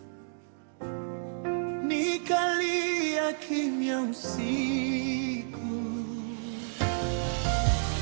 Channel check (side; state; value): left; silent; digital silence